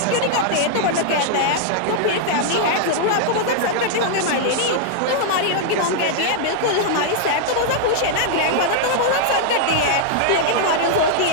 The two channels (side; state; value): both; different; correlation -0.01